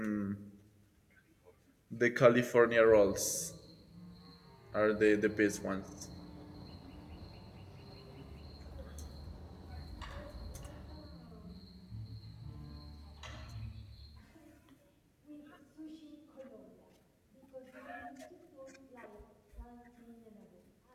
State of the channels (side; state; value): both; identical; correlation 1.00